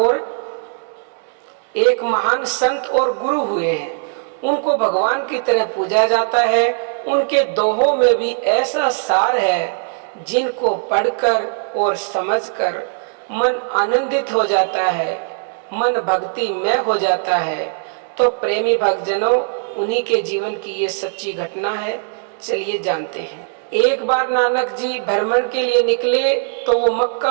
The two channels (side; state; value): left; silent; 66 dB below the other